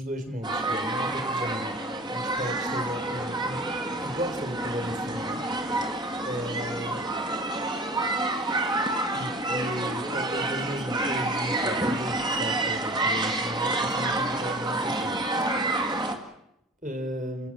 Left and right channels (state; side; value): normal; both; correlation 0.41